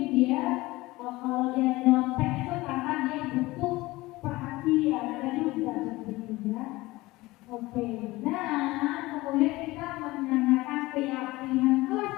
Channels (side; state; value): right; quieter; 20.0 dB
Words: dia kalau dia nyontek itu karena dia butuh perhatian, ada juga begitu ya. Oke, nah kemudian kita menanyakan keyakinan kelas